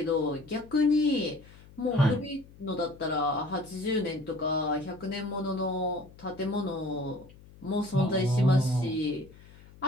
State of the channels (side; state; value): left; noise; hum, 22 dB below the sound